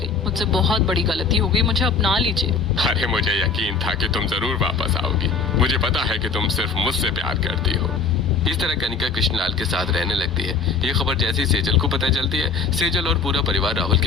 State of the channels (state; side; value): quieter; right; 4.9 dB